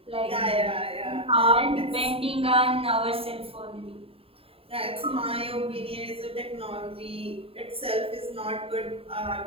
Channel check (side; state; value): left; late; 0.27 ms